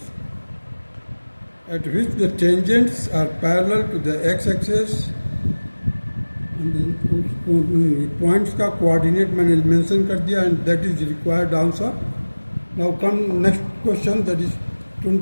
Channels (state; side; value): inverted; both; correlation -1.00